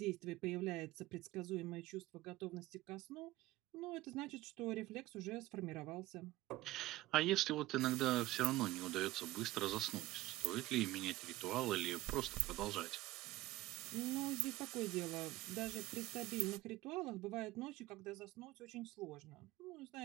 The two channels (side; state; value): left; quieter; 17.6 dB